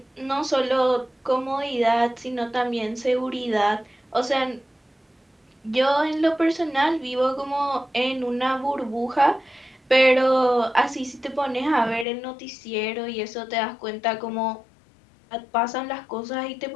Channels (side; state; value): right; drops out; at 12.1 s